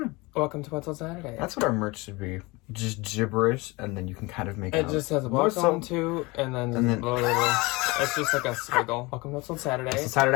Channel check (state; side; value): quieter; right; 24.1 dB